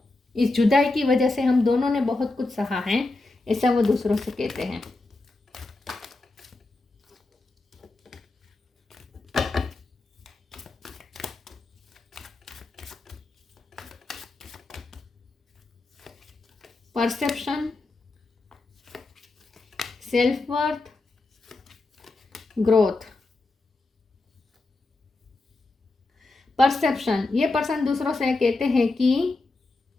इस जुदाई की वजह से हम दोनों ने बहुत कुछ सहा है, ऐसा वो दूसरों से कहते हैं। Perception, self worth, growth. Perception, ये पर्सन दूसरों से कहते हैं कि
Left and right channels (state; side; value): quieter; right; 3.2 dB